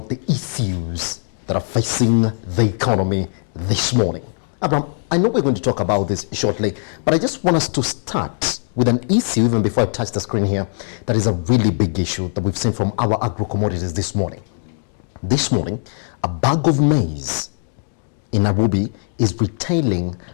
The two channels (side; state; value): right; silent; 66 dB below the other